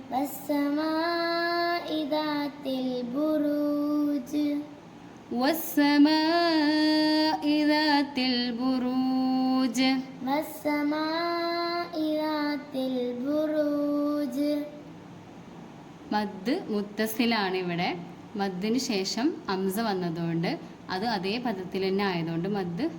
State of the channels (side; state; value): both; identical; correlation 1.00